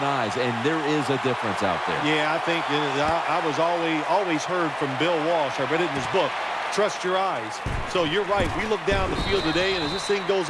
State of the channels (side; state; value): both; identical; correlation 1.00